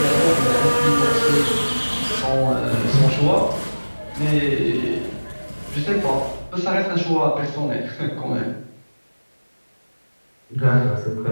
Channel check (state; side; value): inverted; both; correlation -1.00